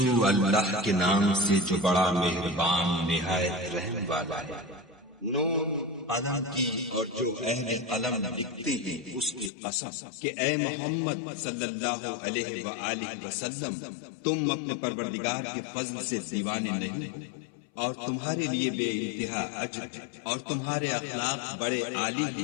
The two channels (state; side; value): drops out; right; at 9.5 s